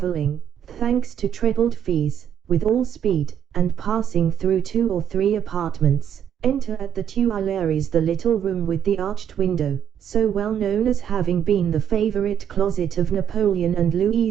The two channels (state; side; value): quieter; left; 9.0 dB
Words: thanks to trebled fees, with all speed, and passing through 2 or 3 apartments. Enter at the Tuileries the little room with the arched window, so well known as having been the favourite closet of Napoleon and Louis